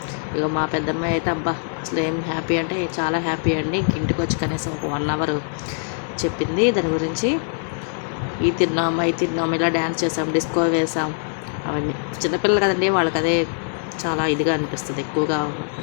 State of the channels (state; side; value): silent; right; 64 dB below the other